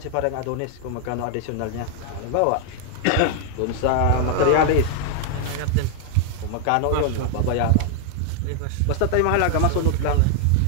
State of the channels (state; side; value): different; both; correlation 0.00